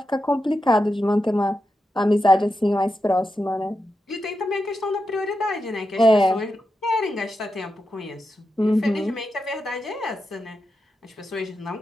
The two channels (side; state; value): both; normal; correlation 0.88